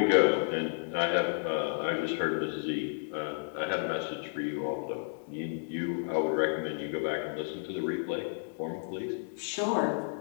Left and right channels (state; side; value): silent; right; digital silence